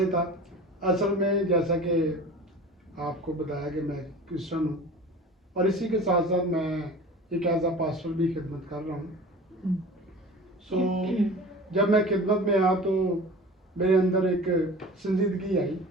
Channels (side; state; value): both; normal; correlation 0.39